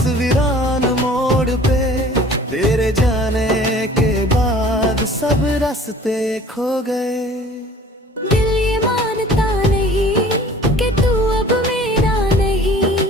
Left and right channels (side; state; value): both; normal; correlation 0.48